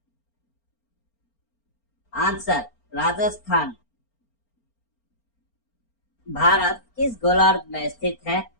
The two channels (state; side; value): late; right; 4.4 ms